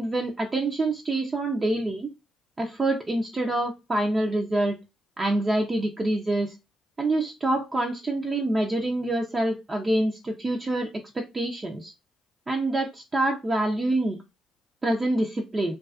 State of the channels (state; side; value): normal; both; correlation 0.86